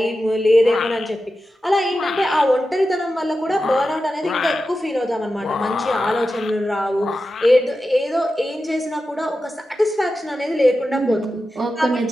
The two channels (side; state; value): both; normal; correlation 0.92